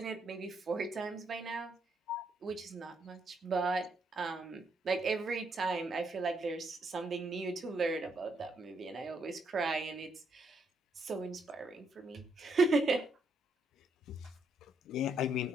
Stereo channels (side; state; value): both; normal; correlation 0.76